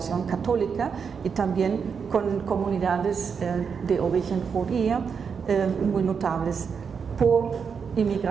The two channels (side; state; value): left; quieter; 6.3 dB